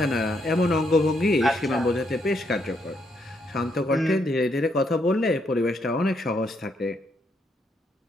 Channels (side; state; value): both; normal; correlation 0.76